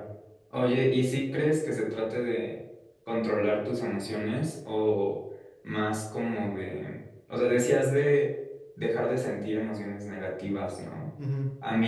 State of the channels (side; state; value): both; identical; correlation 1.00